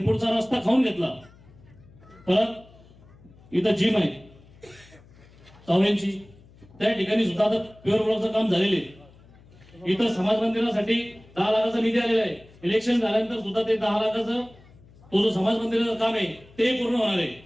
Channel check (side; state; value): left; noise; hum, 25 dB below the sound